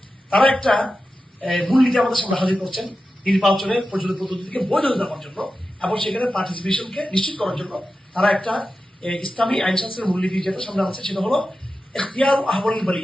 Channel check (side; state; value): both; normal; correlation 0.92